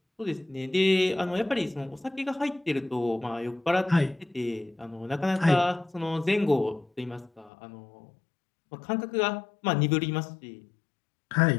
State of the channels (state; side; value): drops out; right; at 7.5 s